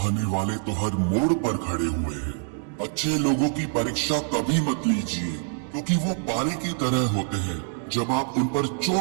वाले तो हर मोड़ पर खड़े हुए हैं। अच्छे लोगों की परीक्षा कभी मत लीजिए, क्योंकि वो पारे की तरह होते हैं। जब आप उन पर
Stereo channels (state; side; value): silent; left; digital silence